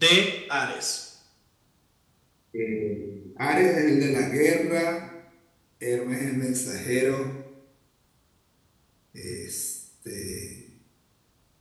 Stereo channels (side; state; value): both; identical; correlation 1.00